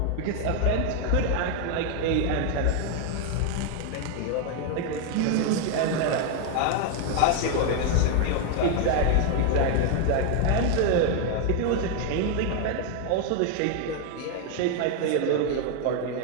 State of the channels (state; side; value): different; both; correlation 0.00